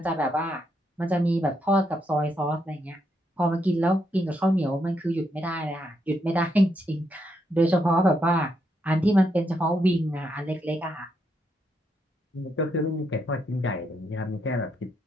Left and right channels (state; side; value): normal; both; correlation 0.78